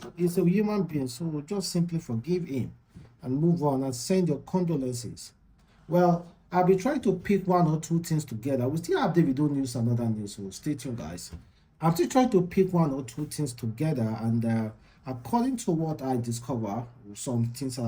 a human being. So just simply forgive him and move on and send your condolences. Well, I'll be trying to pick one or two things together. We still have Davido news and other news, so stay tuned, guys. I'm still trying to pick one or two things together, and according to what I discover, some things that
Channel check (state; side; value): identical; both; correlation 1.00